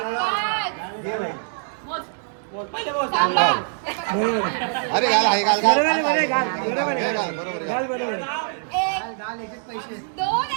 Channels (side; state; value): left; silent; digital silence